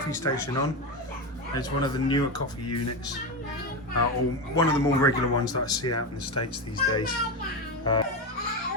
station on. It's one of the newer coffee units, or one of the more regular ones that I see out in the States these days.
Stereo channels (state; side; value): normal; both; correlation 0.16